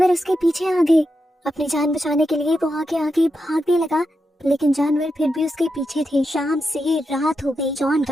उसके पीछे आ गए। अपनी जान बचाने के लिए वो आगे आगे भागने लगा, लेकिन जानवर फिर भी उसके पीछे थे। शाम से रात हो गई। जॉन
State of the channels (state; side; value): normal; both; correlation 0.87